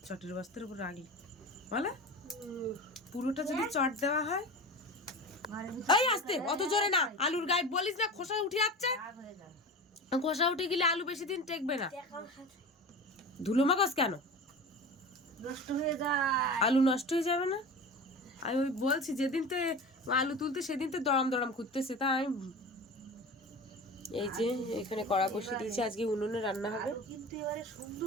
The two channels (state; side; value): normal; both; correlation 0.32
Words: চটের বস্তার উপর রাখলে বলে পুরোটা যদি চট দেওয়া হয়। এই আস্তে, অত জোরে না, আলুর গায়ে বলিস না, খোসা উঠে যাচ্ছে, খোসা উঠে গেলে আলু বেশি দিন টেকবে না। ধুলো মাখাস কেন? নষ্ট হয়ে যায়, আলু নষ্ট হয়ে যাবে না? আমি ওই বলছি যেদিন তে আলু তুলতে সেদিন তো দড়াম দড়াম করতেছে, তা আমি এই যে এখানে কড়া বসিয়ে দিয়েছি, আজকে উনুনে রান্না হবে। কিন্তু এবারে